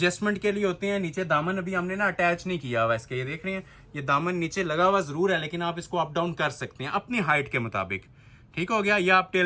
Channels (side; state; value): both; identical; correlation 1.00